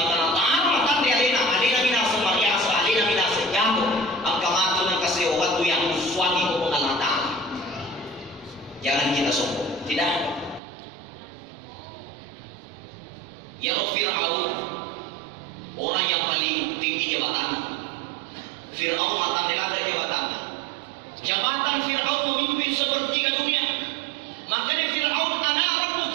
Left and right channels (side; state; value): left; drops out; at 10.6 s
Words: ta'ala matan di alena minasa mariasa alena minasa jamu. Ang kamatu ng kasewatu yang suami ko Allah Ta'ala. Jangan kita sombong. Tidak. Ya Fir'aun, orang yang paling tinggi jabatan. Fir'aun mata melata jabatan. Jabatan Fir'aun memimpin sepertiga dunia. Makanya Fir'aun ana